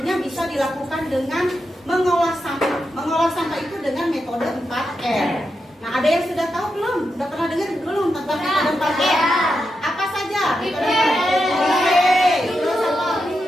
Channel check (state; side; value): normal; both; correlation 0.87